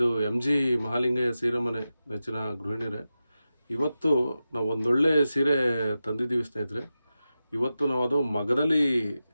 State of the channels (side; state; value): both; inverted; correlation -0.92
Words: ಎಮ್ ಜಿ ಮಹಾಲಿಂಗಯ್ಯ ಸೀರೆ ಮನೆ ನೆಚ್ಚಿನ ಗೃಹಿಣಿಯರೇ. ಇವತ್ತು ನಾವು ಒಂದೊಳ್ಳೆ ಸೀರೆ ತಂದಿದ್ದೀವಿ ಸ್ನೇಹಿತರೆ. ಇವತ್ತು ನಾವು ಅದು ಮಗದಲ್ಲಿ